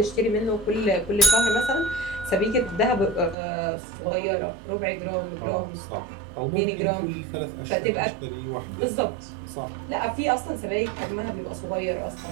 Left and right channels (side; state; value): left; drops out; at 3.4 s